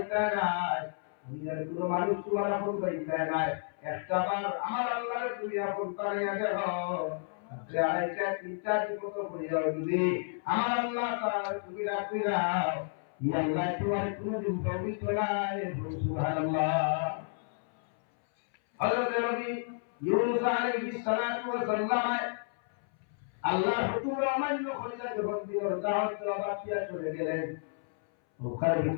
নাই, দুনিয়ার কোনো মানুষ তোমার আপন ভাইটা নাই। একটা বার আমার আল্লাহরে তুমি আপন বানাইয়া দেখো, তাহলে আড়াইটা তিনটা বিপদ হইয়া যদি আমার আল্লাহ তাআলা তুমি ডাক দিলাও, ইয়া আল্লাহ তোমার কোনদিন বাউরি তোলায় সুবহানাল্লাহ। হযরত নবী ইউনূস আলাইহিস সালাতু ওয়াস সালাম আল্লাহর হুকুম অমান্য করিয়া যখন দিলের দাওয়াত দেওয়া বাকিয়া চলে গেলেন, নৌকার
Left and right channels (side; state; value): right; silent; 57 dB below the other